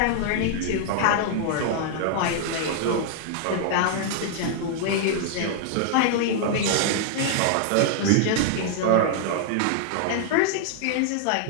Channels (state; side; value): different; both; correlation -0.01